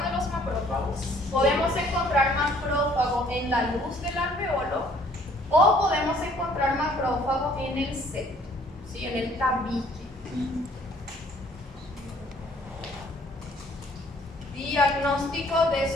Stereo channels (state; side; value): normal; both; correlation 0.59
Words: de los macrófagos? Podemos encontrar macrófago en la luz del alveolo o podemos encontrar macrófago en el septo, ¿sí? En el tabique. Diagnóstico de